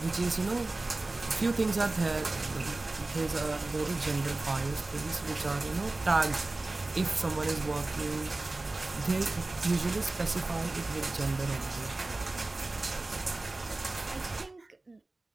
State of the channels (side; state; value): left; quieter; 3.0 dB